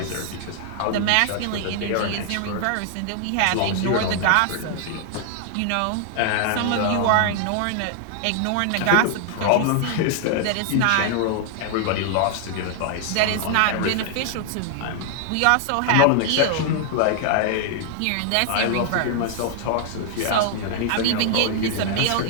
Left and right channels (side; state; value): both; different; correlation 0.00